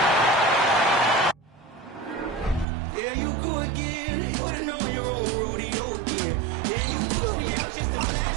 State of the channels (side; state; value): left; drops out; at 2.7 s